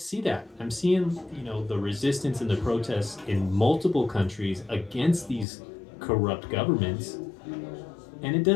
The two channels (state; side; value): drops out; right; at 5.5 s